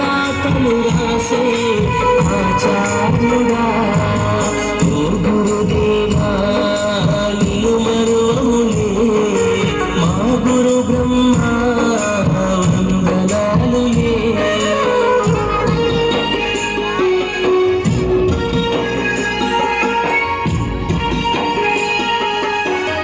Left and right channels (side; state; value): both; identical; correlation 1.00